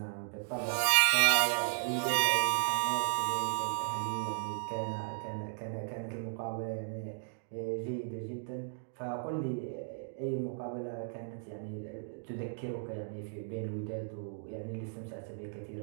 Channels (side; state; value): left; silent; digital silence